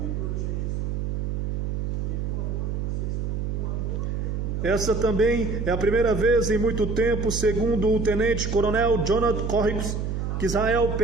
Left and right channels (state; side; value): noise; right; hum, 2 dB below the sound